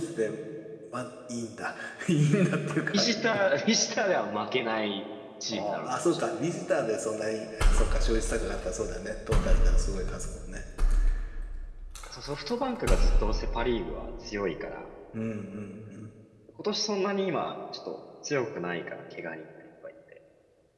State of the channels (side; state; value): both; identical; correlation 1.00